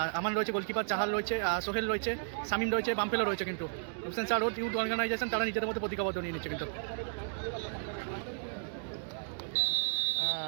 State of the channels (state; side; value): silent; left; digital silence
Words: আমান রয়েছে গোলকিপার, চাহাল রয়েছে, সোহেল রয়েছে, সামিম রয়েছে, বাম্পেলো রয়েছে। কিন্তু হুসেন স্যার ও টিউড অর্গানাইজেশন তারা নিজেদের মধ্যে প্রতিজ্ঞাবদ্ধ নিয়ে নিচ্ছে। কিন্তু